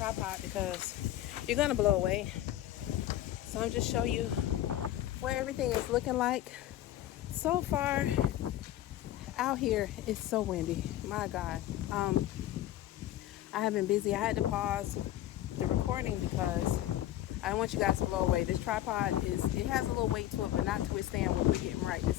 because you're gonna blow away. So I'm just showing you where everything is looking like. So far out here it's so windy. My God. I have been busy. I had to pause the recording because I don't want you guys to blow away. This tripod it has a little weight to it, but not to withstand what we're getting right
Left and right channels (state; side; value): quieter; right; 13.3 dB